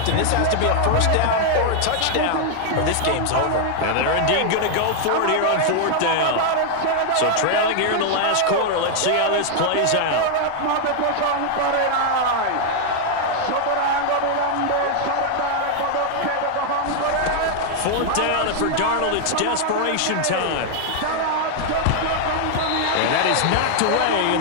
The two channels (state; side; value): different; both; correlation 0.00